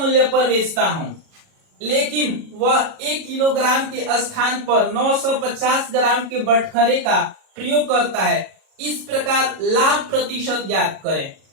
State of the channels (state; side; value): late; left; 37 ms